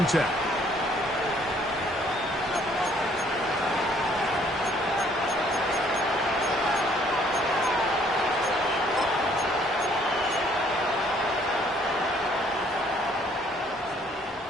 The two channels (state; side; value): normal; both; correlation 0.62